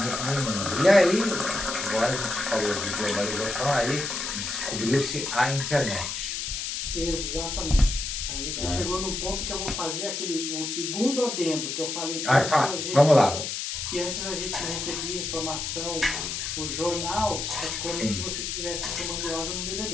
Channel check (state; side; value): noise; left; hiss, 4 dB below the sound